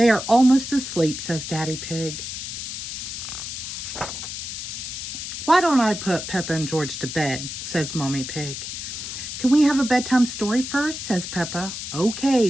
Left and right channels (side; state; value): left; noise; hiss, 7 dB below the sound